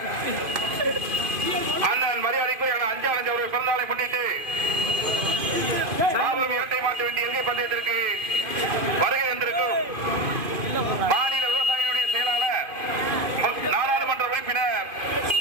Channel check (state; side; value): late; left; 2.5 ms